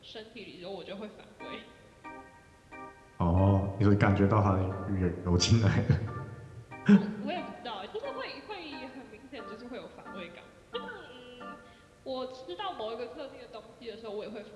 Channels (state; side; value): identical; both; correlation 1.00